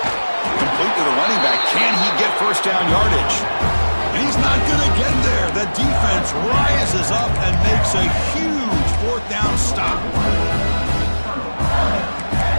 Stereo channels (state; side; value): inverted; both; correlation -1.00